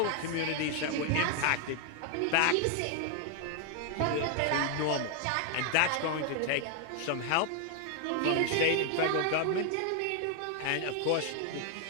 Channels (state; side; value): different; both; correlation 0.00